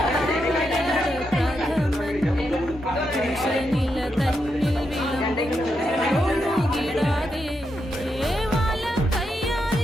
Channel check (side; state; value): both; normal; correlation 0.83